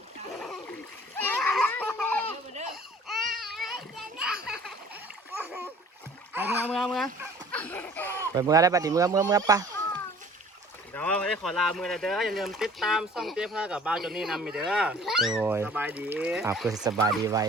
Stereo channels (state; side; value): normal; both; correlation 0.50